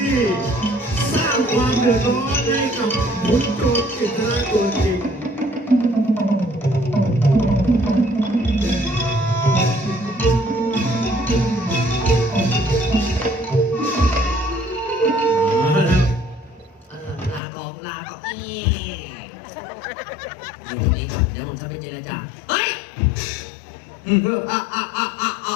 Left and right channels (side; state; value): right; drops out; at 17.4 s